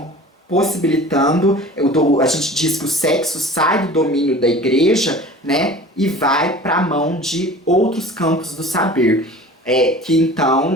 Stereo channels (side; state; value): both; normal; correlation 0.41